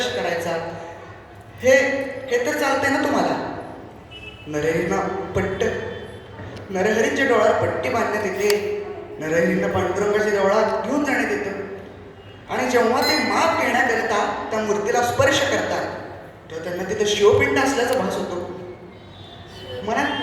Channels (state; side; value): identical; both; correlation 1.00